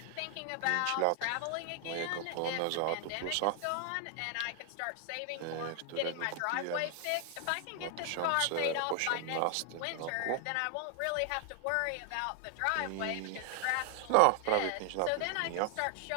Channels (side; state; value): both; different; correlation 0.00